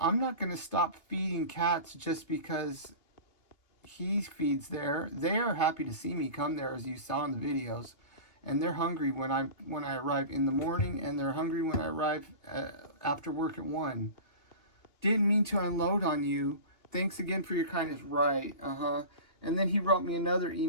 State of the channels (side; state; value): right; late; 2.6 ms